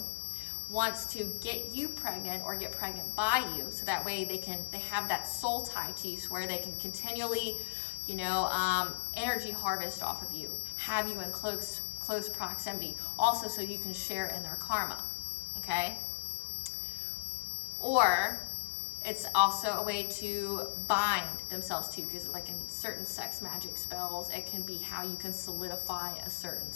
wants to get you pregnant or get pregnant by you, so that way they have that soul tie to you, so where they can continually, energy harvest off of you, have you in close proximity, also so you can share in their karma, okay? Or it's also a way to bind themselves to, because like in certain sex magic spells, it can be how you can solidify a certain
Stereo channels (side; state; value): right; silent; digital silence